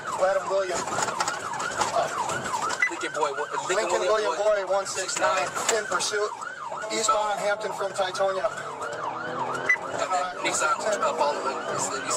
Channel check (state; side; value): identical; both; correlation 1.00